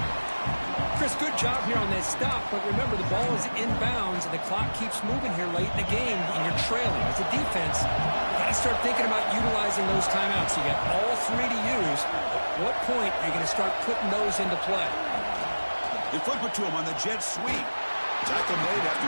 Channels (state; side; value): inverted; both; correlation -1.00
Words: Chris, good job here on that stop, but remember, the ball is inbounds, and the clock keeps moving here late in the game, and you're trailing. As a defense, you got to start thinking about utilizing those timeouts. You got all 3 to use. At what point are you going to start putting those into play? They flip it to him on the jet sweep. Tackle made